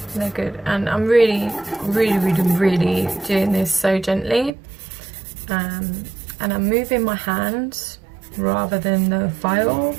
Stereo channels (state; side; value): drops out; left; at 4.5 s